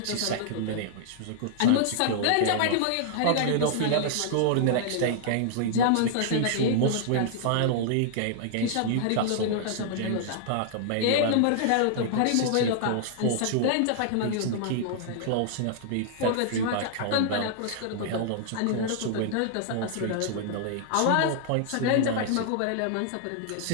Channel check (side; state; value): both; different; correlation -0.01